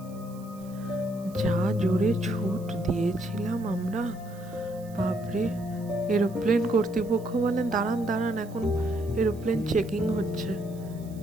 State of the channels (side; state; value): right; noise; hiss, 25 dB below the sound